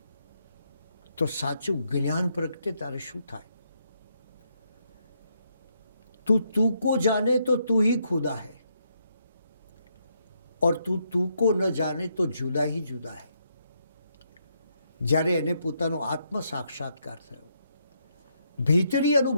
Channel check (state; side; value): inverted; both; correlation -0.77